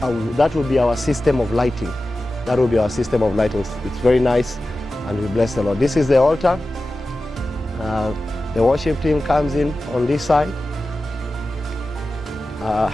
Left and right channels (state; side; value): normal; both; correlation 0.94